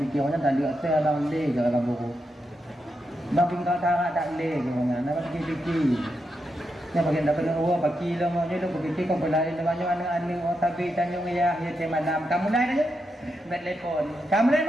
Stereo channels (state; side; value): normal; both; correlation 0.85